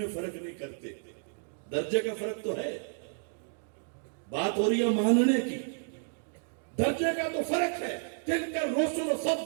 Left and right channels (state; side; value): silent; left; digital silence